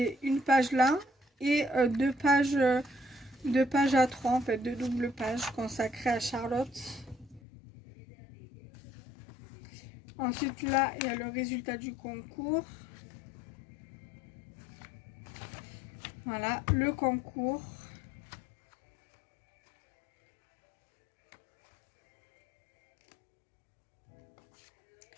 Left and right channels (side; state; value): right; drops out; at 7.4 s